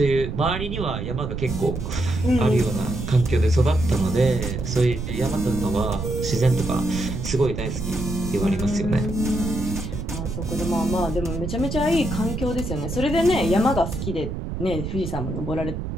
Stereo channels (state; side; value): noise; right; rumble, 5 dB below the sound